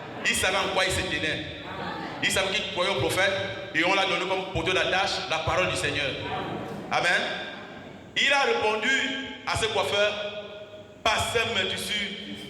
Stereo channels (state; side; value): identical; both; correlation 1.00